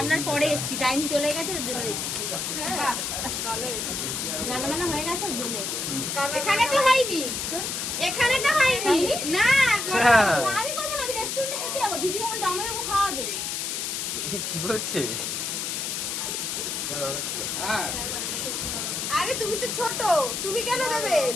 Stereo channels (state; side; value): noise; left; hiss, 2 dB below the sound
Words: পরে এসেছি, টাইম চলে গেছে ওর জন্য এসেছি। হ্যাঁ, ভালো হয়েছে। রান্না বান্না হয়ে গেছে ওর জন্য এসেছি। এখানে তো হয়নি। এখানে তো হয়নি। না, হ্যাঁ। আমি করবো না, আমি রেস্টুরেন্টে খেতে যাবো। দিদি আমার জামাইবাবু খাওয়াবে। কি বলছে? আরে তুমি তো ছোট, তুমি কেন দেবে?